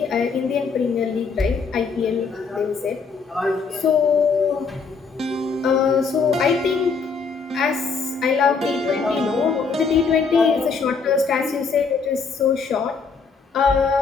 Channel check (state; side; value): quieter; right; 5.1 dB